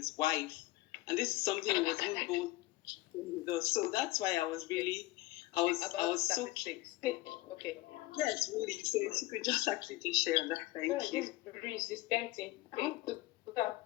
wife. And this is something he was even both with us. So that's why I was so statistics. Okay. yes, really. So if you could just actually just share that, thank you. This is tempting.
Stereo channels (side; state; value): right; quieter; 18.8 dB